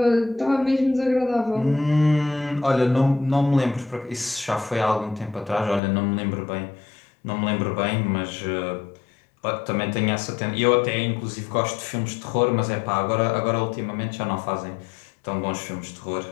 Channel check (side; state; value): right; drops out; at 5.8 s